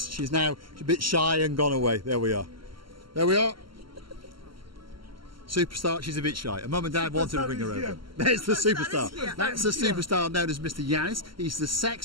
She's now a bit shy and gone away. There we are. There we are. Superstar. She's a bit shy. Her mum and dad wanted to bring her over. There's the superstar. That's the superstar known as Mr. Yance. He's the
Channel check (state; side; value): late; left; 0.74 ms